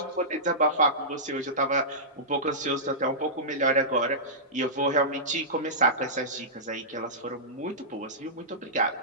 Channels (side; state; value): both; normal; correlation -0.17